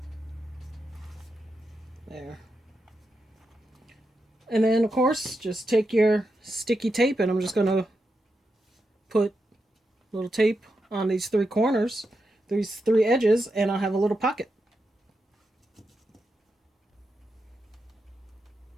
There. And then, of course, just take your sticky tape, and I'm just going to put little tape on these three corners, these three edges, and I'll have a little pocket.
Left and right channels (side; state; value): both; normal; correlation 0.87